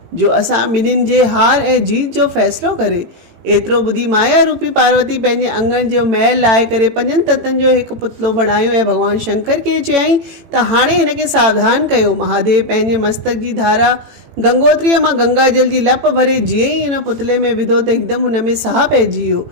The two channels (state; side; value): late; left; 18 ms